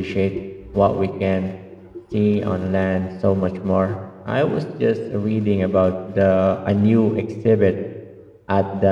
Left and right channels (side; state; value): both; identical; correlation 1.00